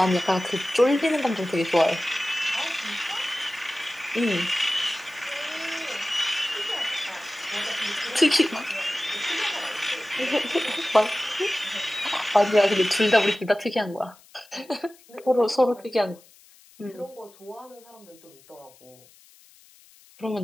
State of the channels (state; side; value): noise; left; hiss, 26 dB below the sound